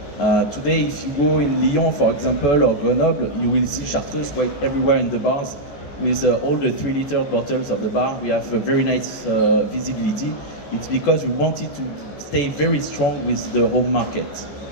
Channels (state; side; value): late; right; 14 ms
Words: Today, if you go in Lyon, for example, or Grenoble, you will see Chartreuse quite everywhere in the bars with all the 3-liter bottles of the bar. We have a very nice visibility. It's because we wanted to stay very strong with the home market.